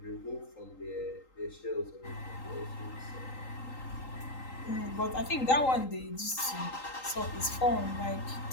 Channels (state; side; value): late; right; 3.8 ms